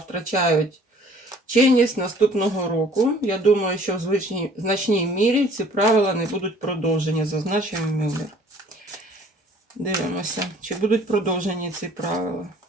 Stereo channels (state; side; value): normal; both; correlation 0.54